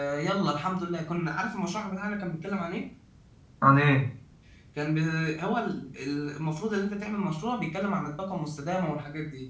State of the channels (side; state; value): both; identical; correlation 1.00